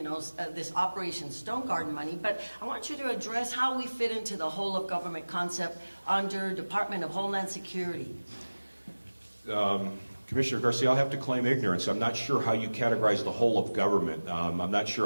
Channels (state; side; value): inverted; both; correlation -1.00